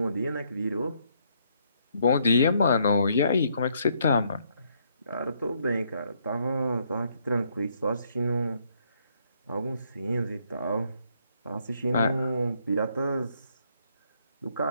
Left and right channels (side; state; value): both; inverted; correlation -0.71